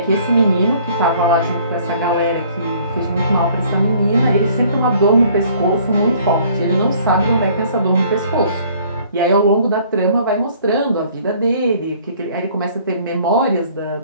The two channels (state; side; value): inverted; both; correlation -0.57